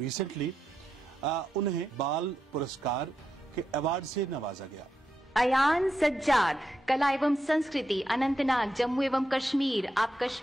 उन्हें बाल पुरस्कार के अवार्ड से नवाजा गया। अयान सज्जाद, कला एवं संस्कृति, अनंतनाग, जम्मू एवं कश्मीर। आप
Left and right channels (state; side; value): normal; both; correlation 0.85